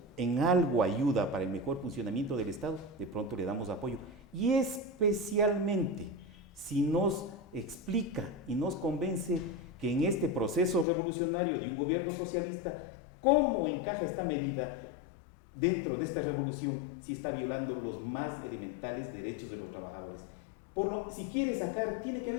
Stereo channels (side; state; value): right; drops out; at 10.9 s